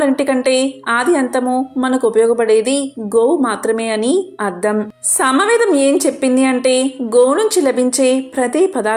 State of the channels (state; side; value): identical; both; correlation 1.00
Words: ఆది అంతము మనకు ఉపయోగపడేది గోవు మాత్రమే అని అర్థం. సామవేదం ఏం చెప్పింది అంటే గోవు నుంచి లభించే ప్రతి